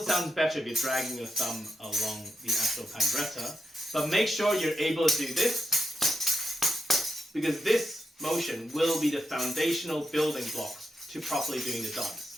better if you're dragging your thumb along the actual pandereta. But make sure you're able to do this, because this motion will be the foundational building blocks to properly doing the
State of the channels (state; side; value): normal; both; correlation 0.85